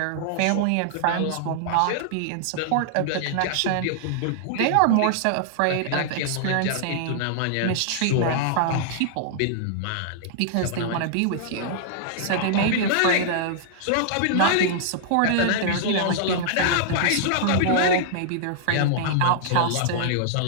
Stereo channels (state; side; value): different; both; correlation -0.01